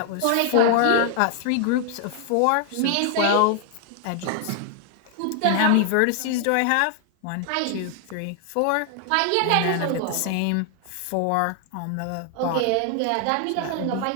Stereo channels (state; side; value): different; both; correlation 0.00